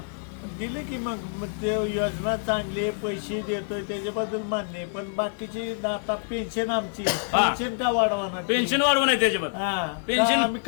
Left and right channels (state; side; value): silent; right; 61 dB below the other